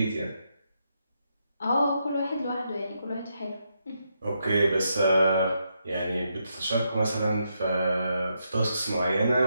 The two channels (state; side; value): inverted; both; correlation -0.81